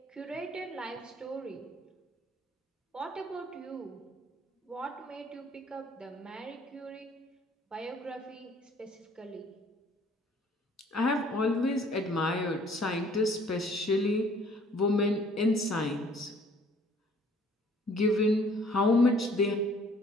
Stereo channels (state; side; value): normal; both; correlation 0.57